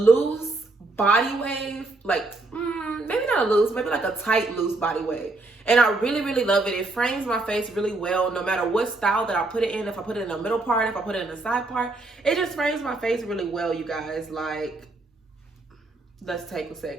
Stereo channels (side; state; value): left; quieter; 3.1 dB